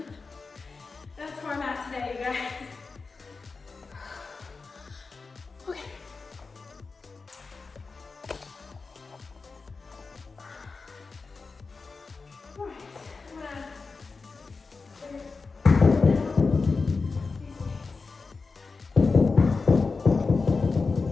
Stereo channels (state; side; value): quieter; right; 4.3 dB